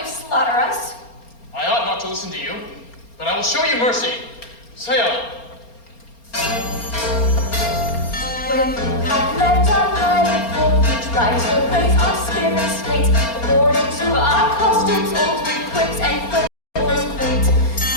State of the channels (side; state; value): right; late; 4.3 ms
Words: slaughter us. I ought not to listen to you, but I will show you mercy. Say on. When you have left our pilot for you try to raise our spirits late, according to our costumes, old with quips and frivolous quaint.